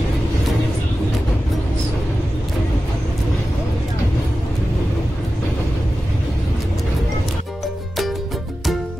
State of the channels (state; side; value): normal; both; correlation 0.94